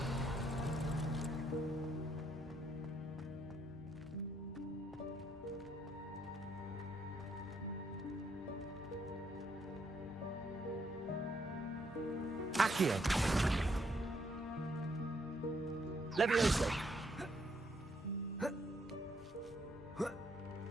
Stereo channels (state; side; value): normal; both; correlation 0.73